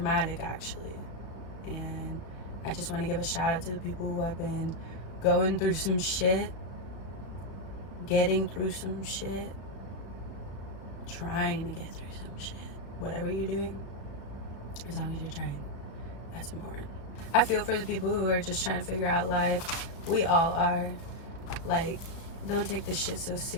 actually. And I just want to give a shout out to the people who have been going through some shit, getting through some shit, trying to get through some shit. Whatever you're doing, as long as you're trying, that's important. I feel for the people who are just trying to figure out life. We all are. Like, don't take this shit so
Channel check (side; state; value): right; late; 35 ms